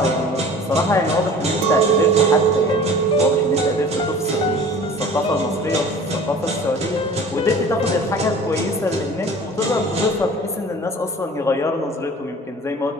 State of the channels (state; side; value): normal; both; correlation 0.44